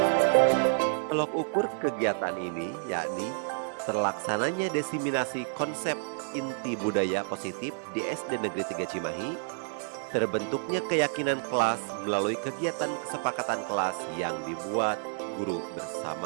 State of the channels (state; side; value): silent; left; digital silence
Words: Tolok ukur kegiatan ini yakni terlaksananya diseminasi konsep inti budaya positif di SD Negeri 3 Cimahi, terbentuknya keyakinan kelas melalui kegiatan kesepakatan kelas yang dibuat guru